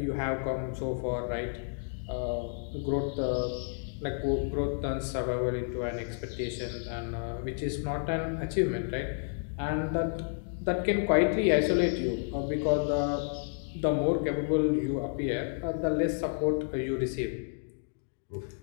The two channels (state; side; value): silent; right; digital silence